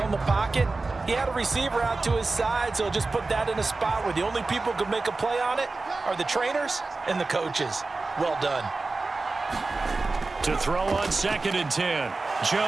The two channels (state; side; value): quieter; left; 3.6 dB